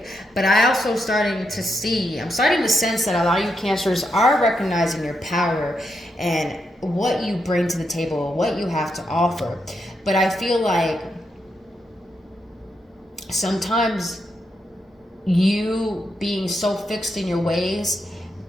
But I'm starting to sense that a lot of you Cancers are recognizing your power and what you bring to the table, what you have to offer. But I feel like sometimes you being so fixed in your ways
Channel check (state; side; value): normal; both; correlation 0.82